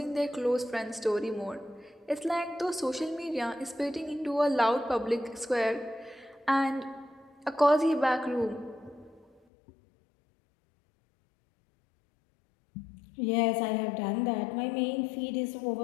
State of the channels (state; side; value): drops out; right; at 9.4 s